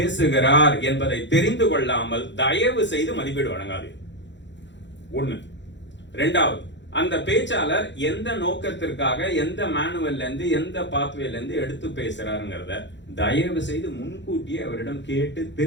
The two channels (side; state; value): right; late; 0.52 ms